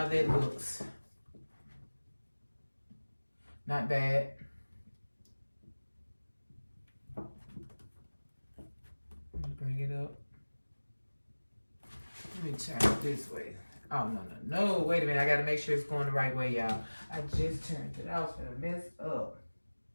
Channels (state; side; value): inverted; both; correlation -1.00